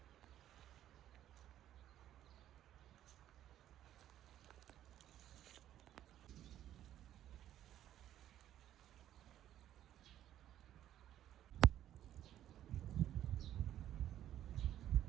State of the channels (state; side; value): quieter; left; 11.9 dB